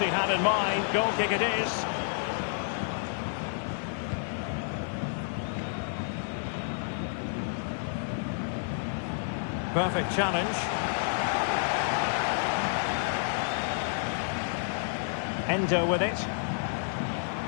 had in mind. Goal kick it is. Perfect challenge. Endo with it.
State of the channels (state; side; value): silent; right; 58 dB below the other